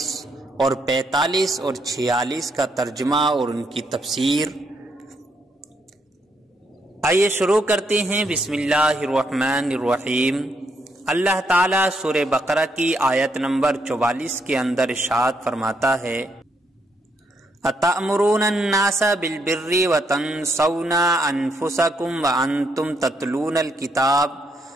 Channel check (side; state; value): both; normal; correlation 0.75